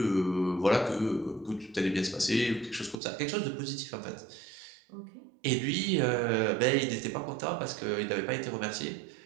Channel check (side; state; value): left; drops out; at 3.0 s